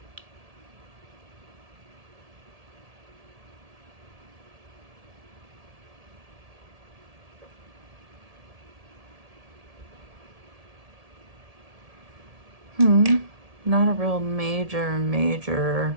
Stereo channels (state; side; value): late; left; 1.7 ms